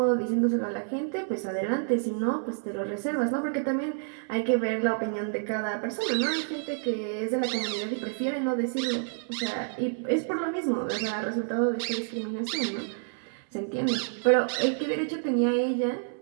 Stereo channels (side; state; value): left; silent; 59 dB below the other